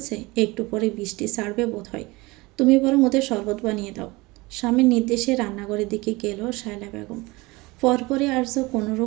একটু পরে বৃষ্টি ছাড়বে বোধ হয়, তুমি বরং ওদের শরবত বানিয়ে দাও। স্বামীর নির্দেশে রান্নাঘরের দিকে গেল শায়লা বেগম। পরপরই আর্য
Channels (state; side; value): quieter; left; 22.8 dB